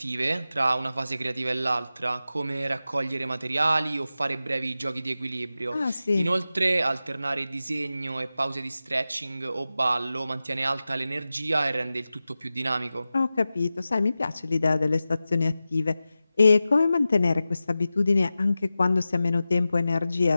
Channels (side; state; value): both; inverted; correlation -0.94